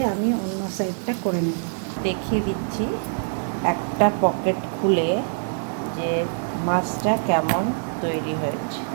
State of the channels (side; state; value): left; silent; digital silence